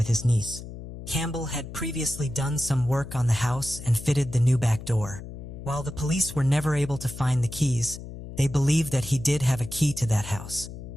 his niece. Campbell had previously done some work on the house and fitted the new back door. While the police were never able to find the keys, they believed that he did have a key to that house.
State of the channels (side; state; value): left; noise; hum, 12 dB below the sound